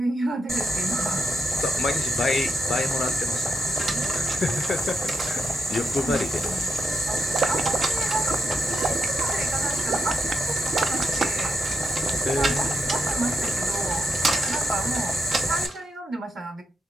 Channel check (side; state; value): both; normal; correlation 0.86